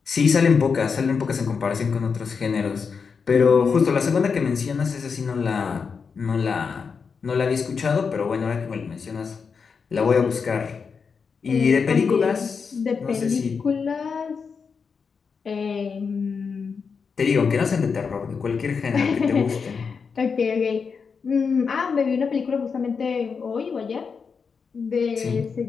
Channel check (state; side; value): quieter; right; 5.6 dB